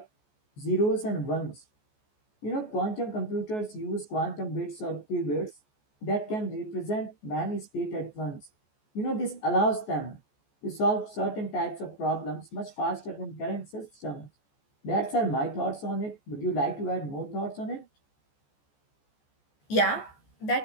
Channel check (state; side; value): late; right; 14 ms